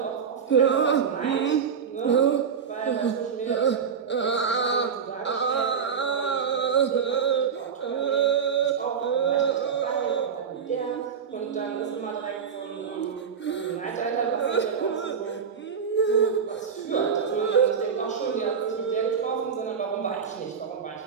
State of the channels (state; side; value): quieter; left; 6.7 dB